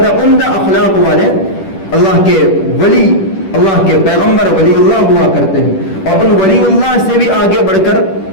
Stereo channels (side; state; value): right; late; 10 ms